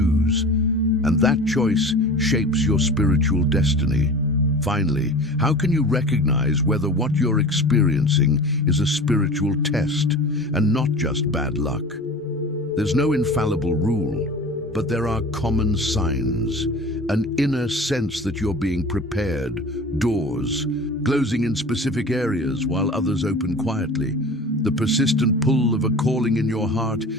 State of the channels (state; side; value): normal; both; correlation 0.38